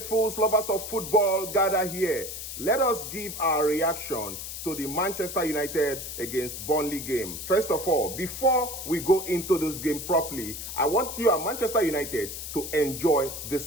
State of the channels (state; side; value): noise; left; hiss, 8 dB below the sound